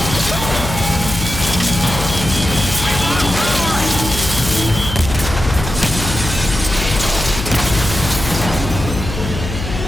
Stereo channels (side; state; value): left; noise; hum, 6 dB below the sound